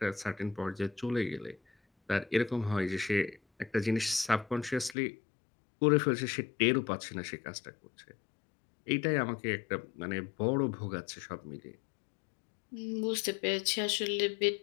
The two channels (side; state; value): right; drops out; at 5.0 s